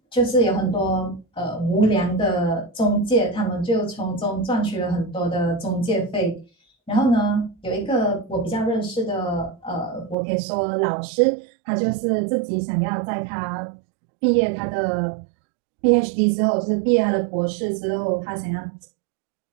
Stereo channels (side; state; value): left; drops out; at 10.2 s